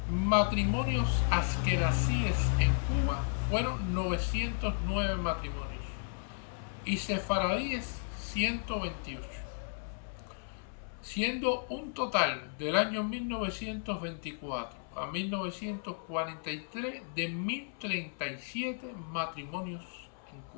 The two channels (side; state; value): right; silent; 55 dB below the other